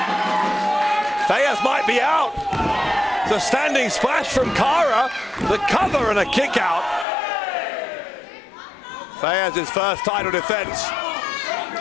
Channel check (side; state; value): right; drops out; at 7.1 s